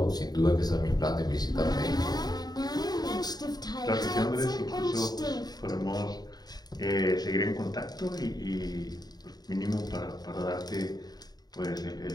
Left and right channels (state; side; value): late; right; 0.19 ms